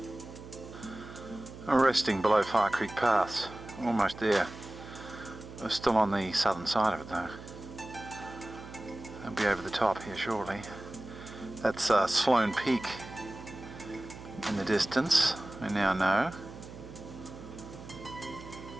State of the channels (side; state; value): right; noise; hum, 14 dB below the sound